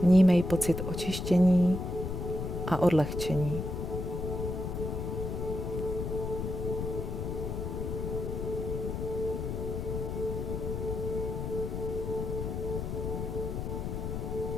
Vnímej pocit očištění a odlehčení.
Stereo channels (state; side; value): noise; left; rumble, 3 dB below the sound